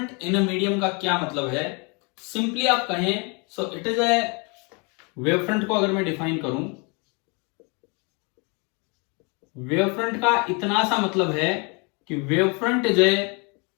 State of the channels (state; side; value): quieter; right; 32.2 dB